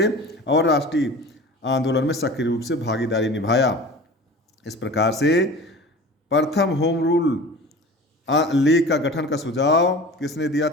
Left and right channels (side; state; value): both; normal; correlation 0.38